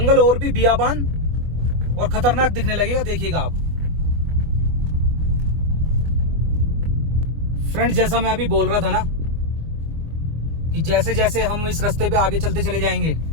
और भी बियाबान और खतरनाक दिखने लगेगा, देखिएगा आप। फ्रेंड, जैसा मैं अभी बोल रहा था ना कि जैसे जैसे हम इस रास्ते पे आगे चलते चले जाएंगे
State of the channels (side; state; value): left; late; 24 ms